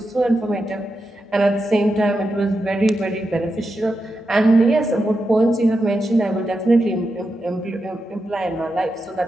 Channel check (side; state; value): both; normal; correlation 0.88